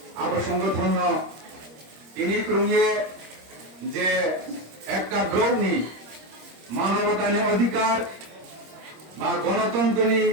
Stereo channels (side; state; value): left; late; 26 ms